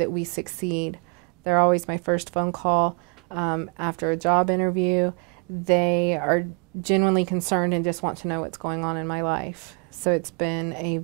we succeed. They're always my first phone call after a job interview. They are genuinely concerned and just want to know what's going on in my life. So it's been a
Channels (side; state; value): left; quieter; 33.2 dB